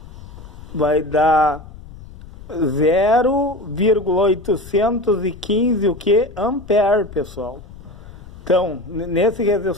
vai dar 0,815 o que? Ampere, pessoal. Então, nesse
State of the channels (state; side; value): noise; left; rumble, 17 dB below the sound